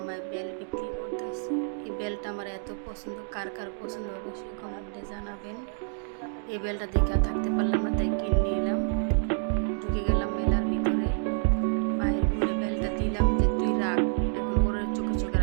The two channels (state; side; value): silent; left; 59 dB below the other